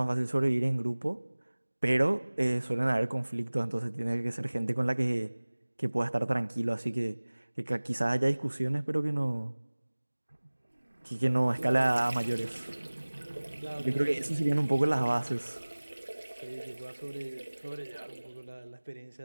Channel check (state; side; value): inverted; both; correlation -1.00